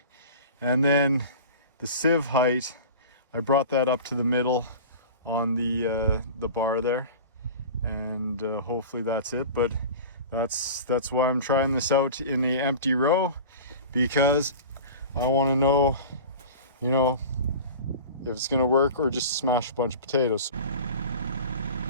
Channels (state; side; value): inverted; both; correlation -0.36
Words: And then the sieve height, I brought that up to the middle on the bar there, and hopefully that's it. But that's why I'm trying this out in a empty row, because I want to know, you know, if it's gonna work or just smash a bunch of potatoes.